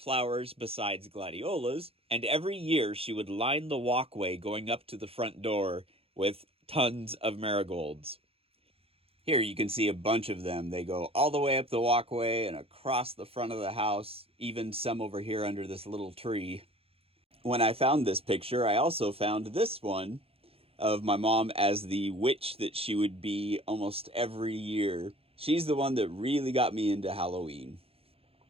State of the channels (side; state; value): left; late; 0.28 ms